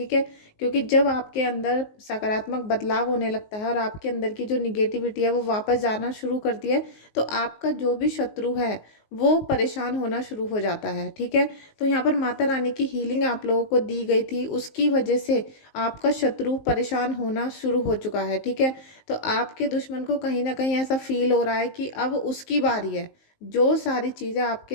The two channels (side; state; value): right; late; 19 ms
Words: है, क्योंकि जब आपके अंदर सकारात्मक बदलाव होने लगता है और आपके अंदर की जो निगेटिविटी है वो वापस जाना शुरू करती है, तो आपका जो भी शत्रु है वो परेशान होना शुरू हो जाता है। ठीक है, तो यहाँ पर माता रानी की हीलिंग आप लोगों को दी गई थी, उसकी वजह से आपका शत्रु परेशान होना शुरू हो चुका है। ठीक है, तो आपके दुश्मन को कहीं ना कहीं ऐसा फील हो रहा है कि अब उसकी बारी है। जो सारी चीज़ें